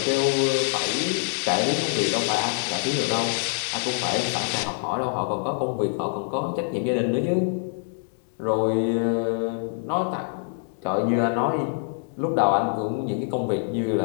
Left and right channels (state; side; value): silent; right; digital silence